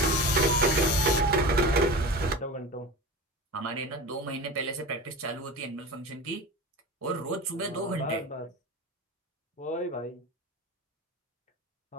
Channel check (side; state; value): both; normal; correlation 0.30